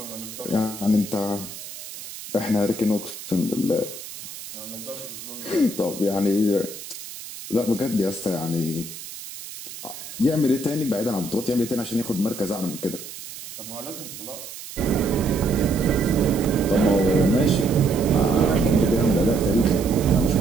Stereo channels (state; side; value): noise; right; hiss, 12 dB below the sound